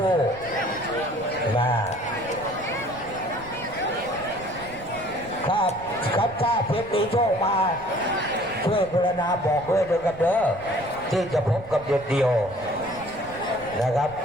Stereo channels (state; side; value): noise; right; rumble, 18 dB below the sound